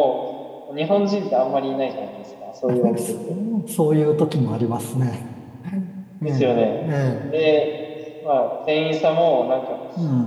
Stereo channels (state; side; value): identical; both; correlation 1.00